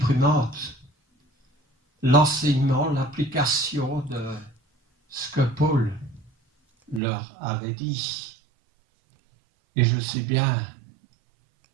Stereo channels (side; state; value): left; drops out; at 7.0 s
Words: l'enseignement, l'application de ce que Paul leur avait dit. Et je sais bien